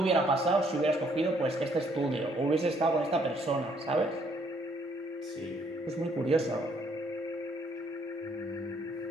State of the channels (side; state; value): both; normal; correlation 0.67